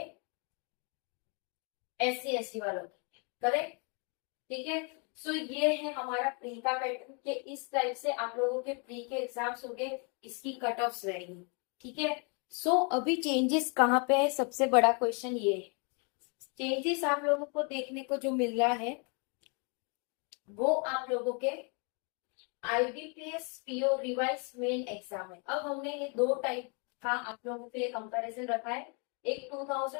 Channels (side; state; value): right; quieter; 36.0 dB